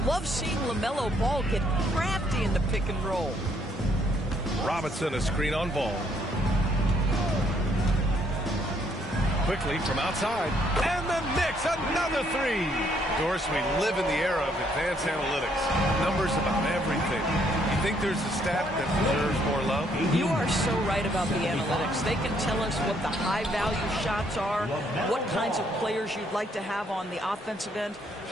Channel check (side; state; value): both; normal; correlation 0.69